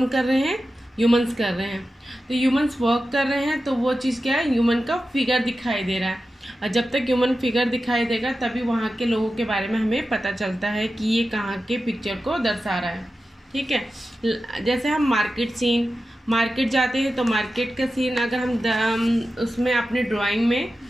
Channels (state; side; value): normal; both; correlation 0.93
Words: कर रहे हैं? ह्यूमंस कर रहे हैं. तो ह्यूमंस वर्क कर रहे हैं तो वो चीज क्या है? ह्यूमन का फिगर दिखाई दे रहा है. और जब तक ह्यूमन फिगर दिखाई देगा तभी वहाँ के लोगों के बारे में हमें पता चलता है कि ये कहाँ के पिक्चर को दर्शा रहा है. ठीक है. जैसे हम मार्केट जाते हैं तो मार्केट का सीन अगर हम उसमें अपने ड्राइंग में